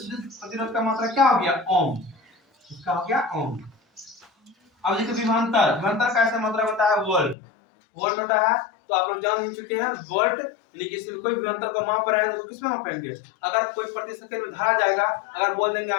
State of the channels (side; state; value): right; drops out; at 7.4 s